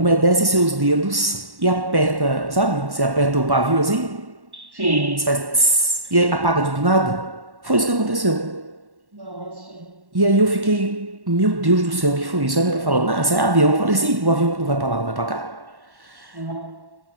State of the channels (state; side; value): late; left; 1.1 ms